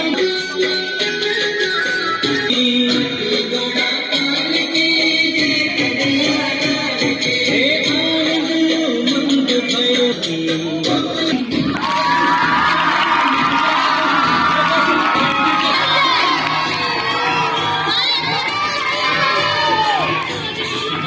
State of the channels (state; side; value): identical; both; correlation 1.00